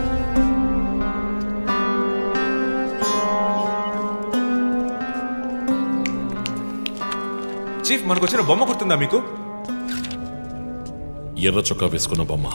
చీఫ్, మనకు వచ్చిన బొమ్మ గుర్తుందా మీకు? ఎర్ర చొక్కా వేసుకున్న బొమ్మ.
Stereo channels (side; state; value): both; inverted; correlation -1.00